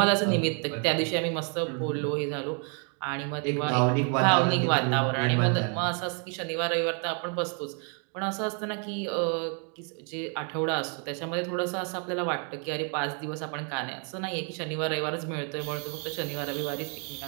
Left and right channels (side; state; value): left; quieter; 39.6 dB